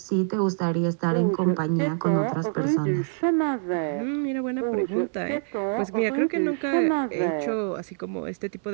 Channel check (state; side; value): silent; left; digital silence